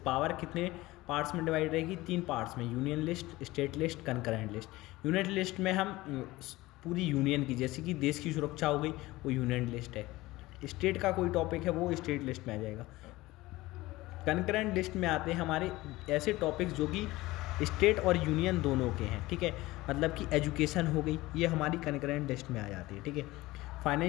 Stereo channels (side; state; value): right; quieter; 19.1 dB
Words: कितने पार्ट्स में डिवाइड रहेगी, 3 पार्ट्स में, union list, state list, concurrent list. Union list में हम पूरी यूनियन की, जैसे कि देश की सुरक्षा हो गई, वो यूनियन लिस्ट है। स्टेट का कोई टॉपिक है वो स्टेट लिस्ट में आ जाएगा। कंकरेंट लिस्ट में आते हैं हमारे ऐसे टॉपिक्स जो कि स्टेट और यूनियन दोनों के हैं, ठीक है, मतलब कि एजुकेशन हो गई, ये हमारी कंकरेंट लिस्ट में आ जाती है, ठीक है।